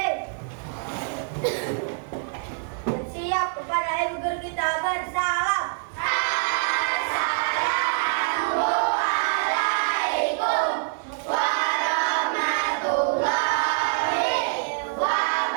Bersiap kepada ibu guru kita bersalam. Assalamualaikum warahmatullahi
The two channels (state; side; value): silent; left; digital silence